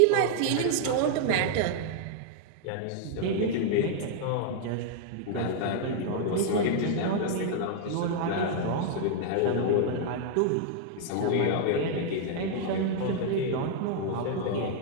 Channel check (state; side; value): different; both; correlation 0.00